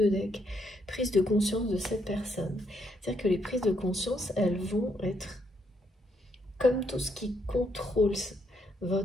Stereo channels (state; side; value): normal; both; correlation 0.75